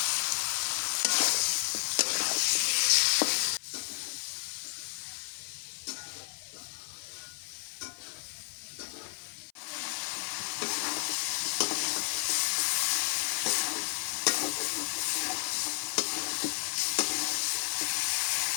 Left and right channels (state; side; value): silent; right; 56 dB below the other